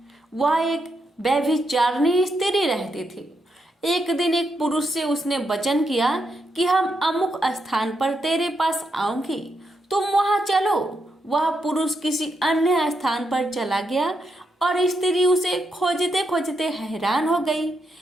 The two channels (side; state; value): both; normal; correlation 0.82